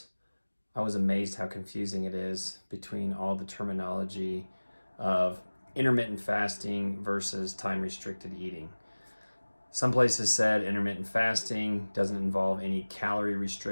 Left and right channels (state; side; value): inverted; both; correlation -1.00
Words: I was amazed how confusing it is between all the terminology of intermittent fasting versus time restricted eating. Some places said intermittent fasting doesn't involve any calorie